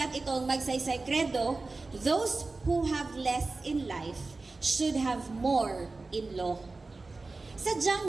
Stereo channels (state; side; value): quieter; left; 3.5 dB